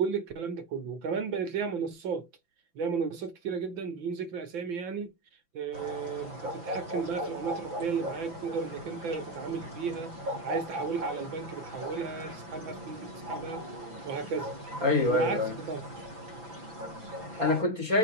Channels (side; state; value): left; late; 5.9 ms